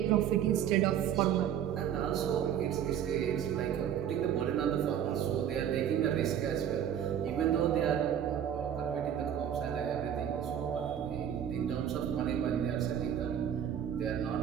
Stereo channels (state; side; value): quieter; left; 9.5 dB